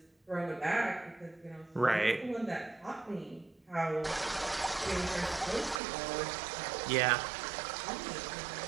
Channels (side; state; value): left; drops out; at 5.8 s